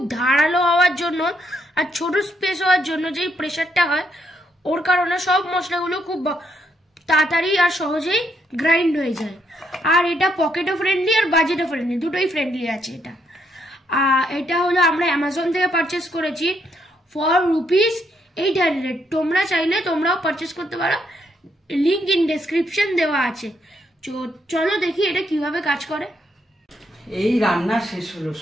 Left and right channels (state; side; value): normal; both; correlation 0.75